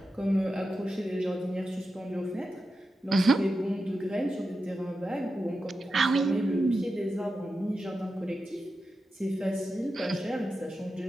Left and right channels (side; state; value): both; normal; correlation 0.90